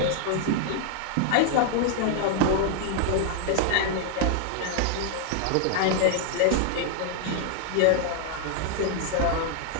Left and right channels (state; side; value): different; both; correlation 0.00